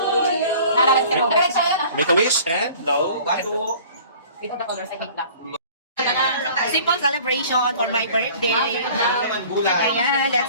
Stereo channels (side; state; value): both; inverted; correlation -0.48